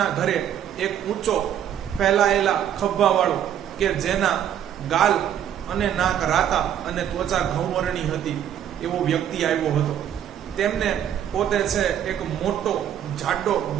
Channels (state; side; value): quieter; left; 10.0 dB